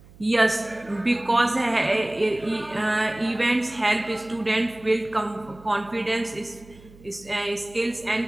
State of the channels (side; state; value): right; noise; hum, 23 dB below the sound